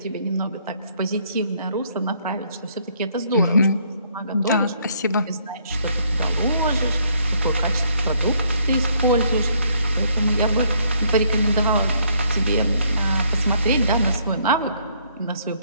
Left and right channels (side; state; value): both; inverted; correlation -0.67